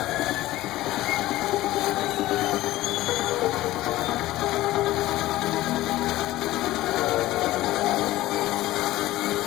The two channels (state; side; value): quieter; right; 16.5 dB